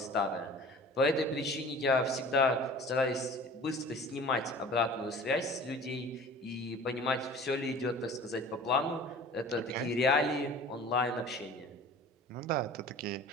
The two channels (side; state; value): both; normal; correlation 0.43